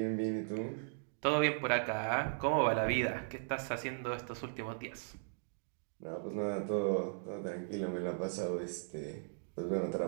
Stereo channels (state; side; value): silent; left; digital silence